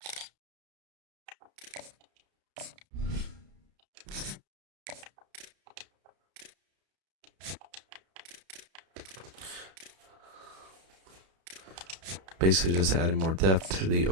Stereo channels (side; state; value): left; late; 32 ms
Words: basically just adding more depth to the